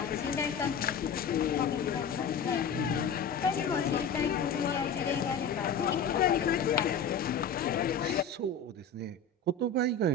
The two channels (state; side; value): quieter; right; 5.1 dB